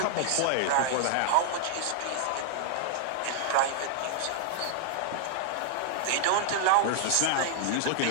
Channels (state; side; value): different; both; correlation -0.01